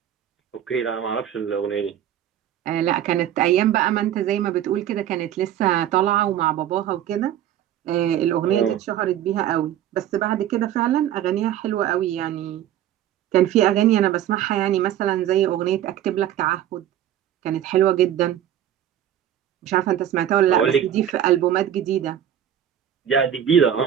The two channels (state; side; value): quieter; left; 10.9 dB